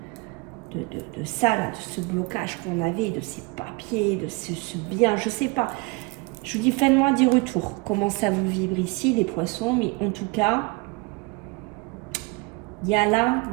de ça, là, de ce blocage qu'on avait, de ces papiers, de ce bien, je sais pas. Je vous dis, faites-moi des retours. Comment ça vous vibre ici, les poissons. Mais en tout cas, il y a là,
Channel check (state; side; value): quieter; left; 25.8 dB